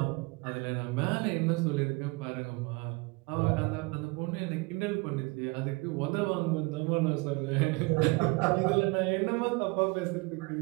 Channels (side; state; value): left; quieter; 27.1 dB